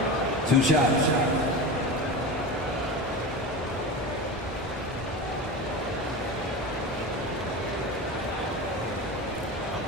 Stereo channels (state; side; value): normal; both; correlation 0.26